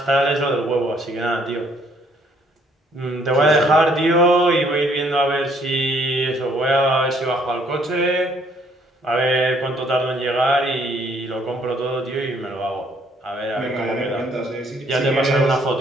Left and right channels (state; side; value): normal; both; correlation 0.65